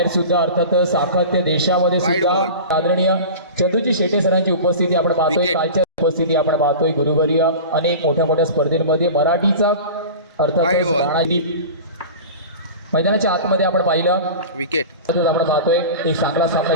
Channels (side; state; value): both; inverted; correlation -0.33